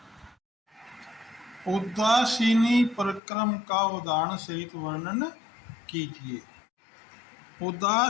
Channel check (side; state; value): right; drops out; at 3.2 s